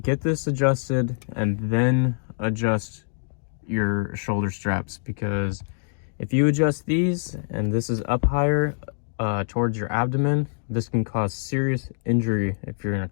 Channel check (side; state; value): right; silent; digital silence